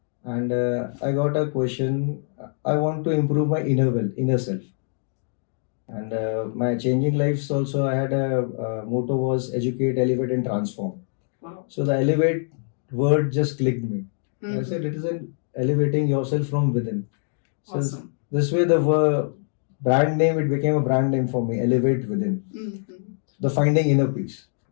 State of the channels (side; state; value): right; silent; digital silence